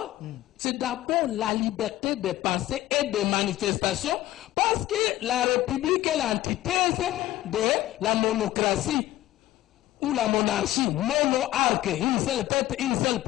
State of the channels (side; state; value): right; quieter; 15.1 dB